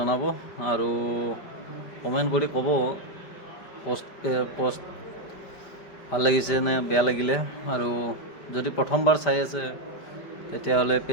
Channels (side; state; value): right; late; 5.1 ms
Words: আৰু কমেণ্ট কৰি ক'ব পষ্ট ভাল লাগিছে নে বেয়া লাগিলে। আৰু যদি প্ৰথমবাৰ চাই আছে তেতিয়াহ'লে